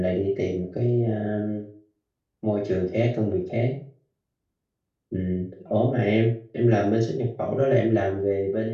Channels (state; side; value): identical; both; correlation 1.00